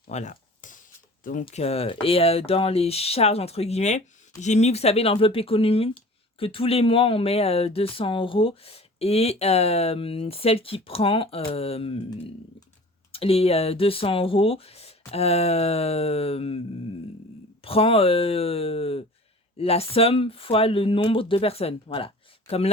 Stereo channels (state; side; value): normal; both; correlation 0.43